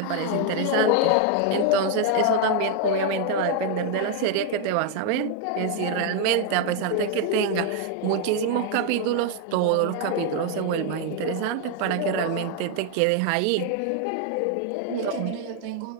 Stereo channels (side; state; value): both; different; correlation 0.01